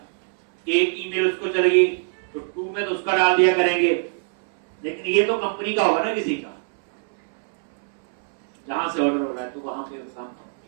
एक ईमेल उसको चलेगी तो टू में तो उसका डाल दिया करेंगे, लेकिन ये तो कंपनी का होगा ना, किसी का जहां से ऑर्डर हो रहा है, तो वहां पे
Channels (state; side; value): silent; left; 63 dB below the other